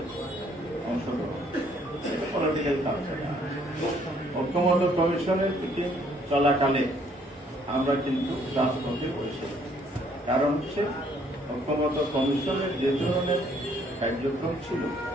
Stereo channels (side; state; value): both; normal; correlation 0.64